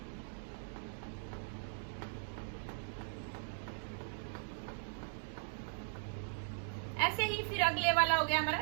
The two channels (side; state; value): left; silent; digital silence